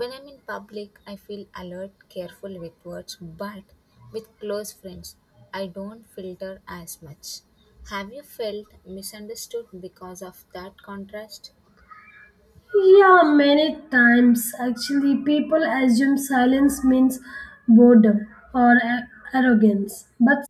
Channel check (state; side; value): identical; both; correlation 1.00